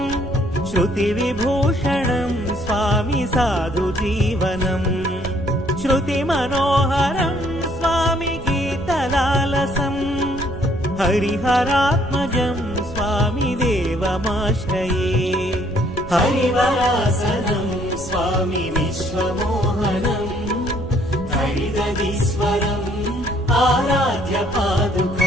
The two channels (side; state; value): right; noise; rumble, 12 dB below the sound